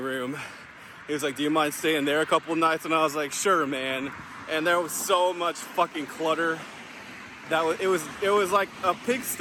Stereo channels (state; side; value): identical; both; correlation 1.00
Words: He was like, do you mind staying there a couple nights? And I was like, sure, man. And there was so much fucking clutter that it was like a